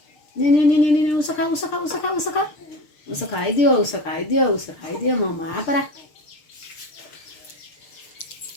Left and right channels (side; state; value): right; late; 6.6 ms